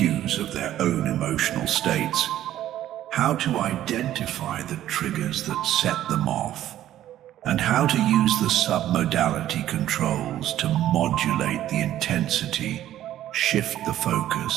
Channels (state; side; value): quieter; left; 12.6 dB